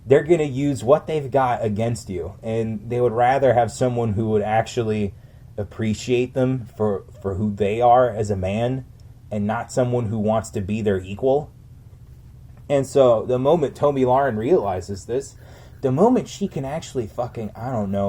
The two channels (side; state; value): both; identical; correlation 1.00